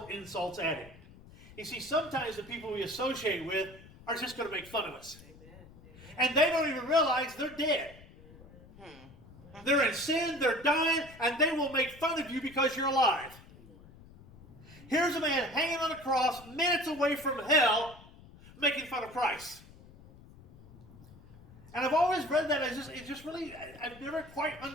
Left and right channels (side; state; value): left; noise; rumble, 21 dB below the sound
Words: insults at him. You see, sometimes the people we associate with are just going to make fun of us. And they don't even realize they're dead. They're in sin, they're dying, and they will make fun of you because you're alive. Here's a man hanging on a cross, minutes away from hell, making fun of Christ. And I've always read that as I've never quite